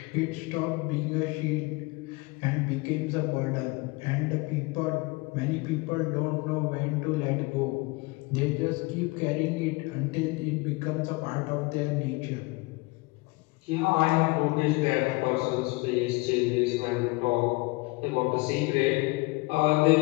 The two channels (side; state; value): right; quieter; 25.1 dB